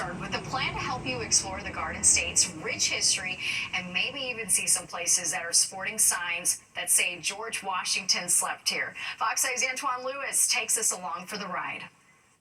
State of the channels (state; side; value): identical; both; correlation 1.00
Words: with a plan to help you explore the Garden State's rich history and maybe even see some places that are sporting signs that say George Washington slept here. Fox 5's Antoine Lewis takes us along for the ride.